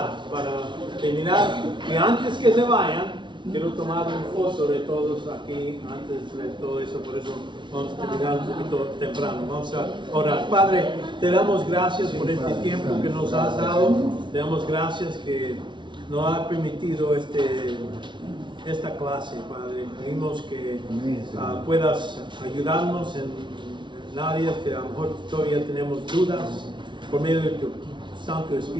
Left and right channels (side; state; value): left; late; 0.23 ms